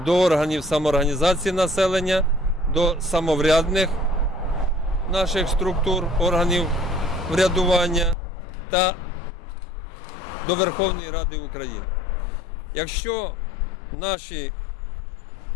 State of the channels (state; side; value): drops out; right; at 8.2 s